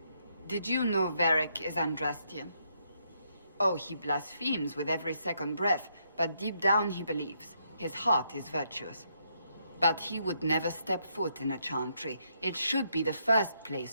Did you know Varric is Andrastian? Oh, he blasphemes with every second breath, but deep down he believes. His heart is virtuous. But he would never step foot in a Chantry. It should be the first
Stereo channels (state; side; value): inverted; both; correlation -0.76